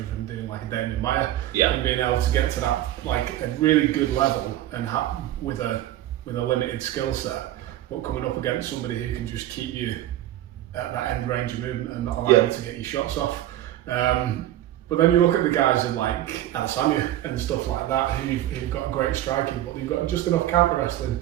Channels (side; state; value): left; quieter; 13.6 dB